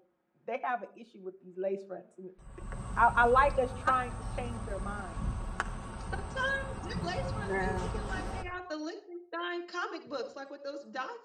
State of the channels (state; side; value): identical; both; correlation 1.00